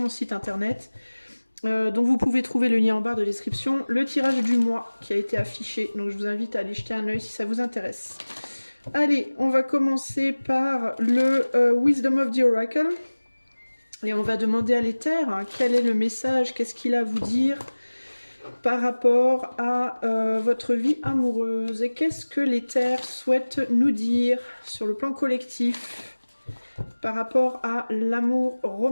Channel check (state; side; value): inverted; both; correlation -1.00